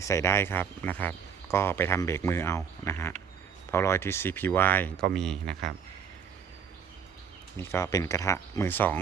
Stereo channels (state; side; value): quieter; left; 7.2 dB